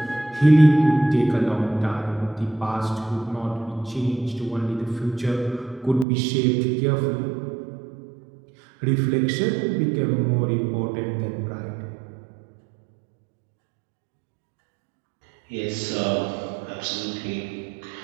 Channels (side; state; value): left; drops out; at 6.1 s